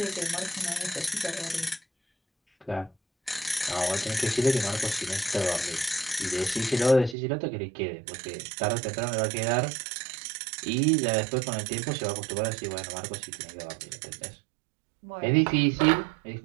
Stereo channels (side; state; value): left; drops out; at 7.2 s